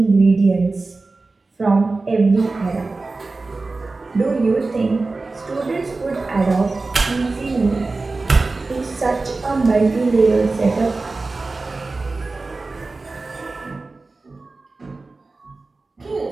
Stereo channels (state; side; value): quieter; left; 3.6 dB